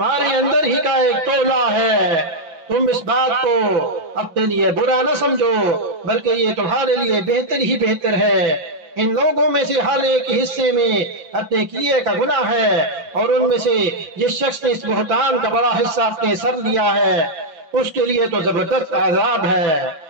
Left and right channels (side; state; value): left; late; 6.0 ms